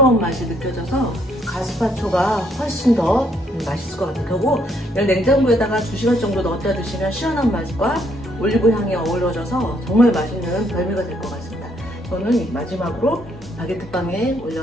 맛이 느껴져서 가스파초가 훨씬 더 맛있을 것 같아요. 그리고 냉장고에다가 2시간 정도 넣었다 드시면 시원한 맛과 올리브 향이 어우러져서 정말 맛있는 별미가 될 것 같습니다. 저는 마지막으로 바게트빵에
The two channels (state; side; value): normal; both; correlation 0.70